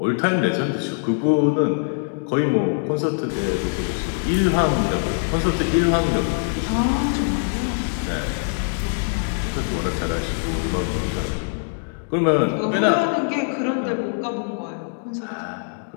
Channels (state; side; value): silent; right; digital silence